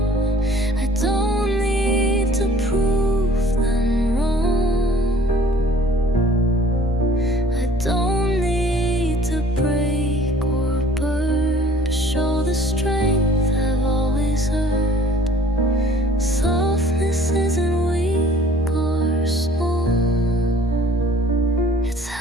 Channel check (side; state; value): both; normal; correlation 0.53